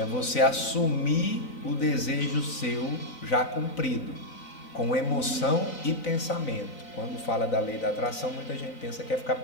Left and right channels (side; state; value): right; late; 3.9 ms